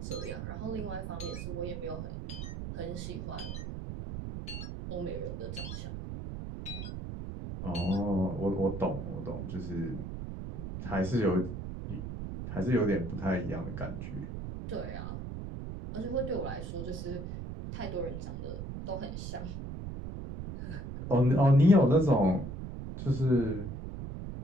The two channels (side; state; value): right; noise; rumble, 7 dB below the sound